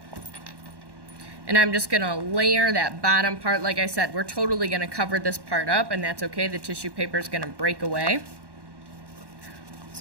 and I'm just going to layer that bottom part. Like I said, we're totally going to cover this part up, and that's okay. The tissue paper is going to break away.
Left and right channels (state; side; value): late; left; 1.1 ms